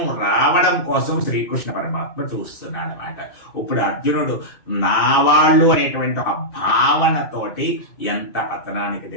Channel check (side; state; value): right; late; 2.6 ms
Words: రావడం కోసం శ్రీకృష్ణ పరమాత్మ చూస్తున్నాడు అన్నమాట. ఇప్పుడు అర్జునుడు నా వాళ్ళు అనేటువంటి ఒక భావనతోటి ఎంత పతనానికి